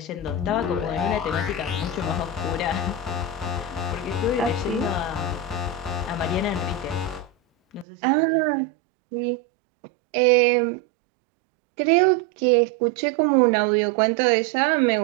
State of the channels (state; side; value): drops out; left; at 7.9 s